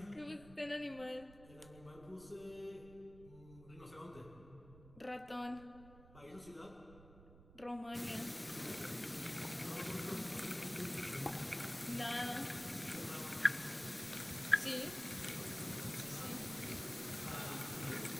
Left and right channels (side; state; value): right; noise; rumble, 18 dB below the sound